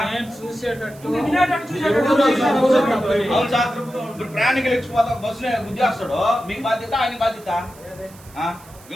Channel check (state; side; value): noise; right; hiss, 23 dB below the sound